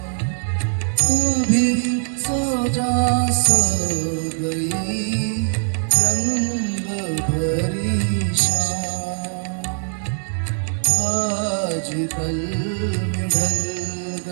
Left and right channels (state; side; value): silent; left; digital silence